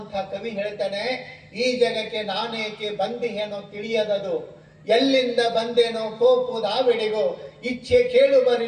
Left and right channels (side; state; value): both; identical; correlation 1.00